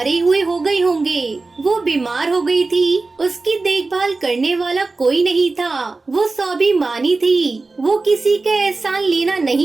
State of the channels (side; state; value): left; quieter; 3.6 dB